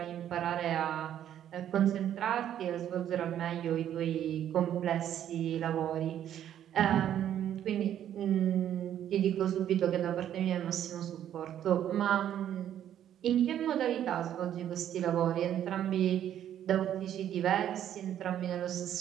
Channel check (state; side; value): quieter; left; 10.6 dB